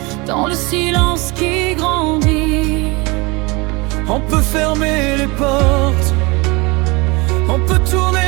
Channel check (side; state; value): left; quieter; 25.8 dB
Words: dans le silence qui grandit. On peut fermer les portes, on peut